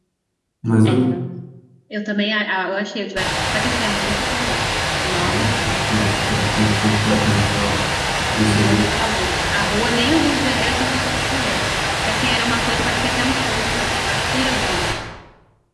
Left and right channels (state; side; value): identical; both; correlation 1.00